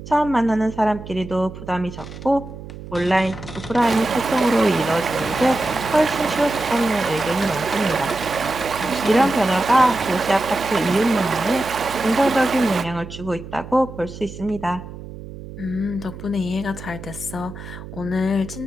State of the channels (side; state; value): right; noise; hum, 13 dB below the sound